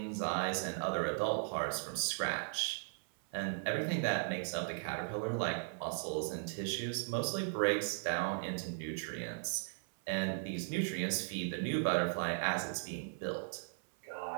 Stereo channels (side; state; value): left; silent; 53 dB below the other